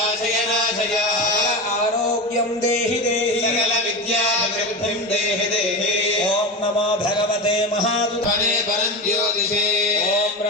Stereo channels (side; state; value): both; normal; correlation 0.21